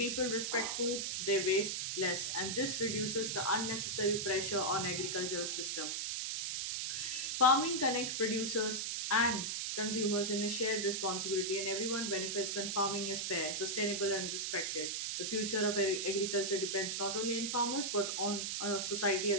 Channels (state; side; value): noise; right; hiss, 1 dB below the sound